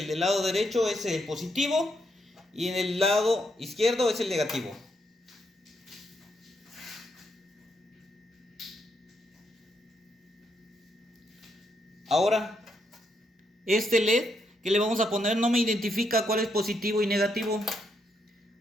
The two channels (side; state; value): both; normal; correlation 0.77